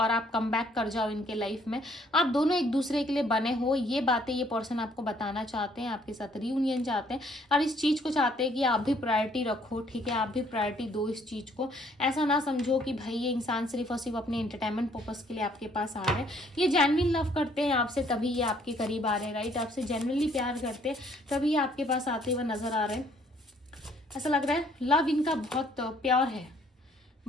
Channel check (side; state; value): both; normal; correlation 0.64